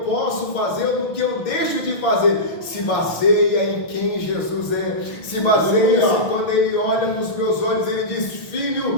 posso fazer, ou no que eu deixo de fazer, se baseia em quem Jesus é, se baseia quando Ele olha nos meus olhos, Ele diz,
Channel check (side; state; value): right; late; 6.1 ms